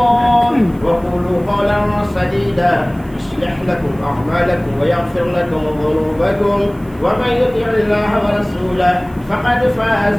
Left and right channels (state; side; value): noise; right; hiss, 28 dB below the sound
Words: وقولوا قولا سديدا يصلح لكم أعمالكم ويغفر لكم ذنوبكم ومن يطع الله ورسوله فقد